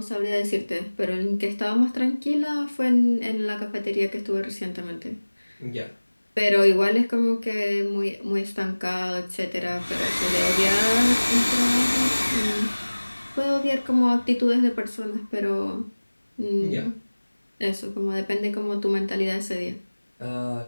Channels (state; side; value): inverted; both; correlation -1.00